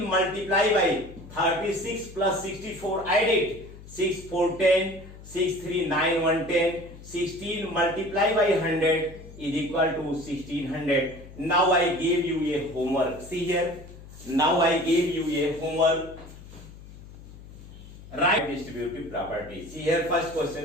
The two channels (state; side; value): noise; left; hum, 17 dB below the sound